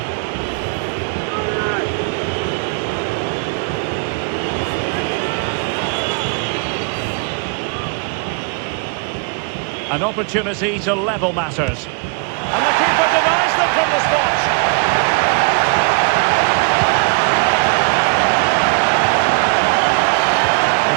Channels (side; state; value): left; quieter; 38.1 dB